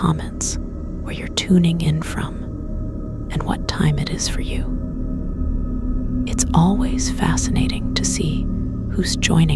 where you're tuning in from and what time it is for you. It's always fascinating to see who's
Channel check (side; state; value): both; identical; correlation 1.00